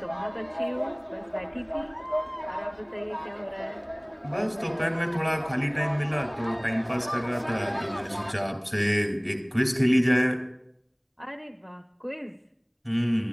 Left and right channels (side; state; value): both; identical; correlation 1.00